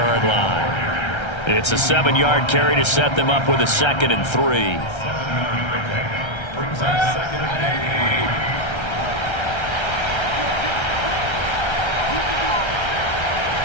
line. It's a 7-yard carry to set them up with a 2nd and 3.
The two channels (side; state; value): right; late; 1.3 ms